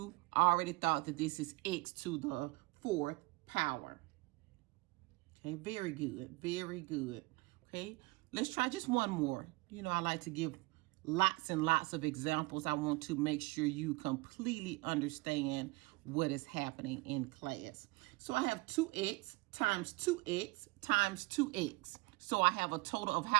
already thought that this is x to the fourth power. Okay, very good. Very good. Okay, let's try just one more. You know, I like to give lots and lots of examples. I want to make sure you completely understand what is happening in class. So I have 2x times 2x times 2x. So I have a total of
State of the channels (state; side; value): quieter; left; 24.4 dB